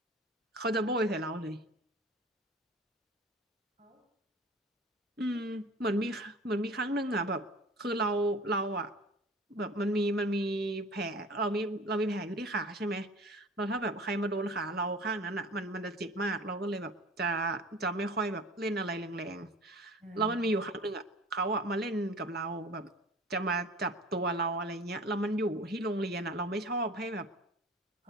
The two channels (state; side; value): normal; both; correlation 0.42